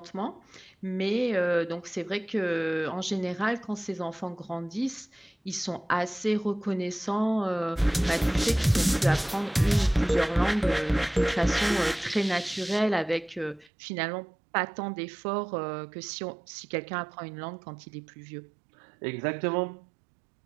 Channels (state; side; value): drops out; left; at 13.7 s